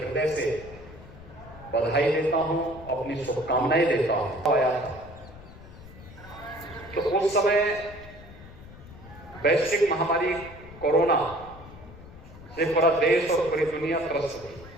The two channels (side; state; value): left; noise; rumble, 18 dB below the sound